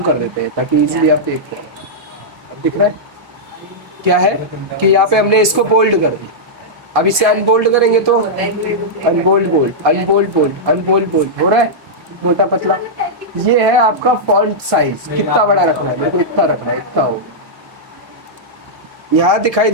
कर देते हैं ताकि इजीली आप देख पाए। अब दिख रहा है क्या है कि यहाँ पे हमने इसको बोल्ड कर दिया, अब इसे अनबोल्ड करेंगे तो unbold bold, unbold bold, unbold bold हो रहा है, मोटा पतला। ये है आपका फॉन्ट साइज, कितना बड़ा रखना है, मेरे को इतना रखना है, इतना हो। यहाँ दिखाई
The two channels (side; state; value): left; late; 1.7 ms